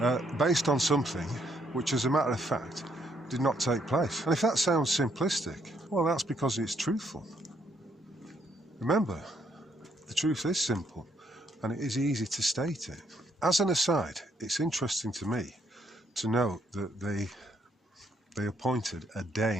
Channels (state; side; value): normal; both; correlation 0.72